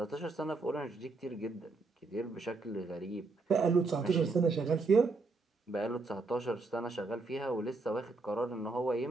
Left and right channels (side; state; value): left; quieter; 3.7 dB